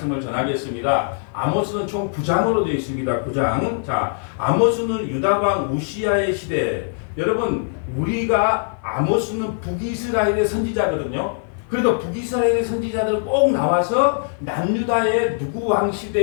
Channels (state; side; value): silent; right; 56 dB below the other